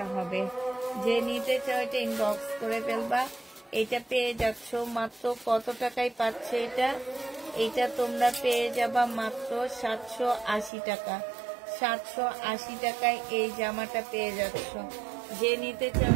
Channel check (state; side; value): drops out; left; at 10.7 s